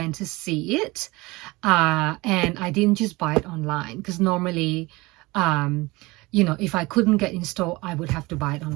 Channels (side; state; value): left; quieter; 22.4 dB